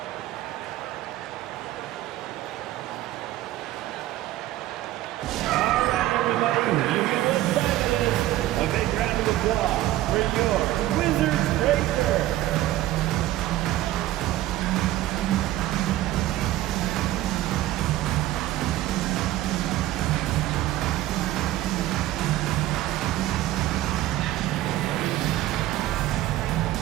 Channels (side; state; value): left; quieter; 15.0 dB